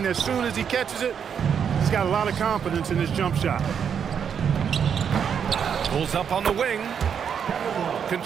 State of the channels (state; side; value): quieter; left; 7.6 dB